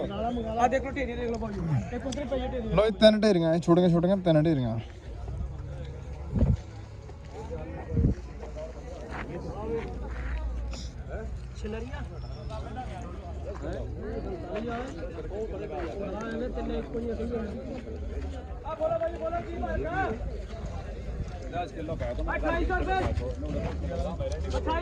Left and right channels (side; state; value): both; identical; correlation 1.00